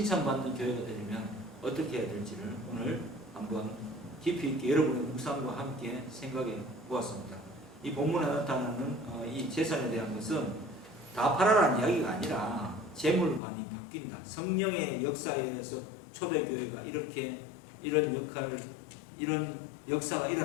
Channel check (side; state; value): right; drops out; at 13.4 s